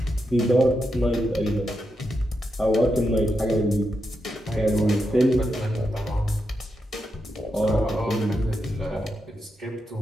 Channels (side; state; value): both; normal; correlation 0.85